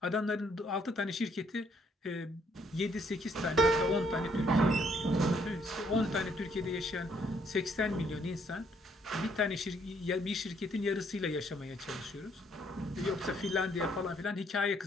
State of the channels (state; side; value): normal; both; correlation 0.68